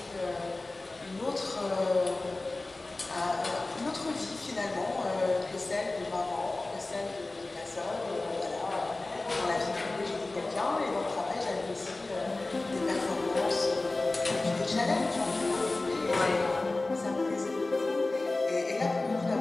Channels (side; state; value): right; quieter; 3.1 dB